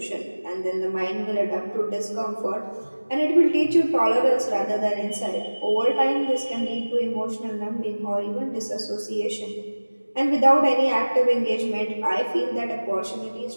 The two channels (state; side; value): inverted; both; correlation -1.00